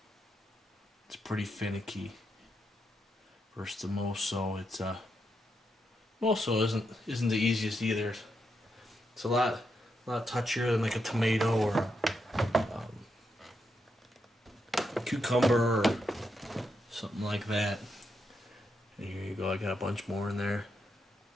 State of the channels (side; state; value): both; normal; correlation 0.83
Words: It's pretty finicky versus the moso. It's moso isn't the easiest either. It's a lot touchier than like a tomato or a cucumber or something like that. And here you go, I got a bunch more in there.